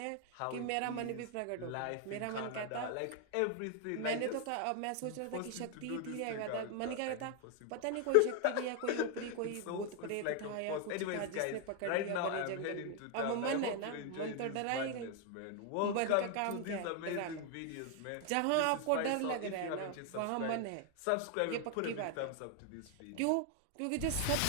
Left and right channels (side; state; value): both; different; correlation 0.00